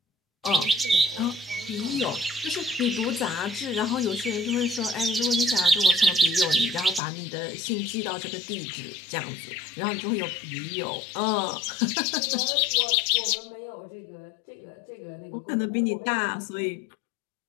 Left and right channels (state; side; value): drops out; right; at 7.0 s